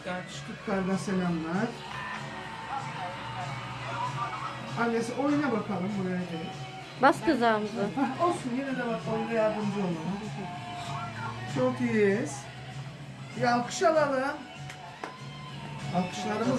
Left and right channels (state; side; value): identical; both; correlation 1.00